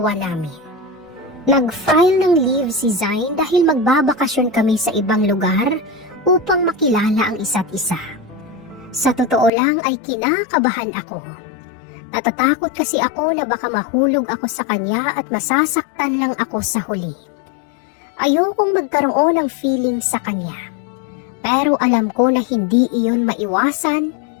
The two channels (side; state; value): right; drops out; at 9.5 s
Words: namin. Nag-file ng leave si Zain dahil magbabakasyon kami sa ibang lugar upang makilala ang isa't isa. Sa totoo lang ay kinakabahan ako. Natatakot kasi ako na baka mahulog ako sa kanya at masasaktan lang ako sa huli. Ayokong magkaroon ng feeling sa kanya. Pero alam ko na hindi iyon maiwasan,